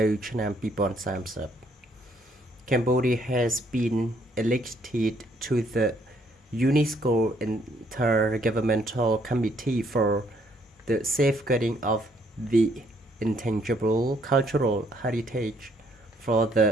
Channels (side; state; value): both; normal; correlation 0.68